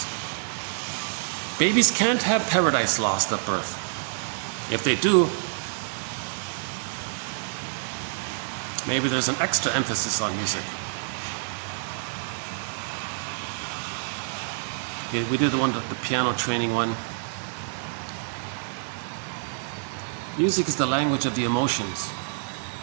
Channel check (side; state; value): left; silent; digital silence